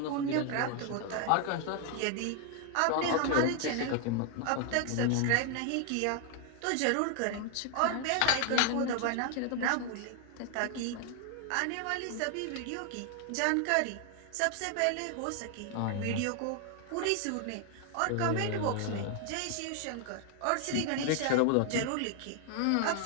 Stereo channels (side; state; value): both; different; correlation 0.00